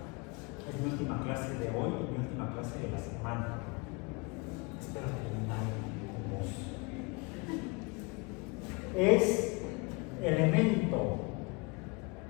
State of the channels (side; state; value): right; quieter; 28.8 dB